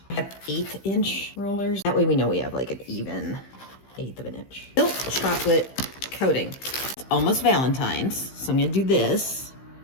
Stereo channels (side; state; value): right; late; 15 ms